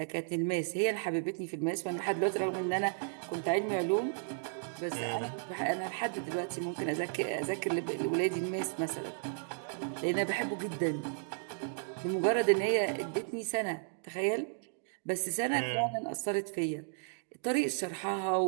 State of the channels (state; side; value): silent; left; digital silence